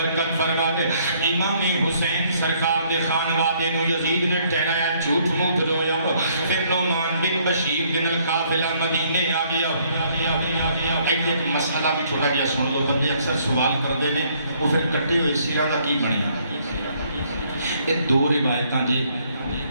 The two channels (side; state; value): both; inverted; correlation -0.66